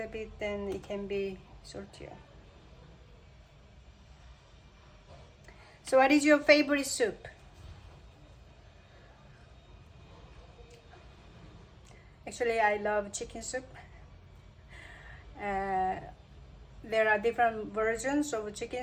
bit, then it can be saltier. So what is your favorite soup? Actually, I love chicken soup. There are different versions of chicken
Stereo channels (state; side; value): identical; both; correlation 1.00